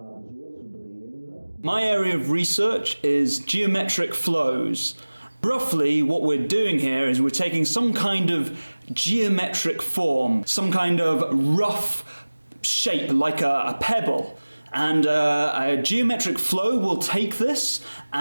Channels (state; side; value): inverted; both; correlation -1.00